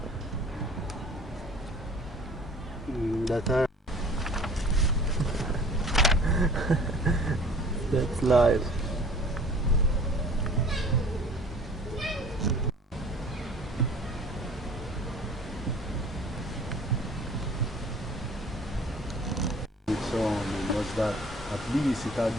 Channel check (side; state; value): both; normal; correlation 0.48